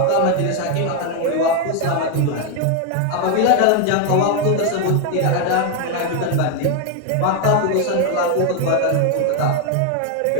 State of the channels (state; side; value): different; both; correlation 0.01